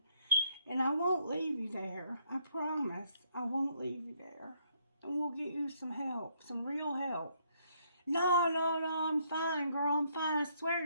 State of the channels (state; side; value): inverted; both; correlation -0.71